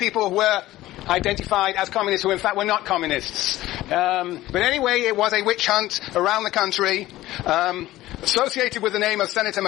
were identified as communists who in fact were not communists. But anyway, it was a witch hunt around the country, associated with the name of Senator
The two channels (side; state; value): right; quieter; 16.1 dB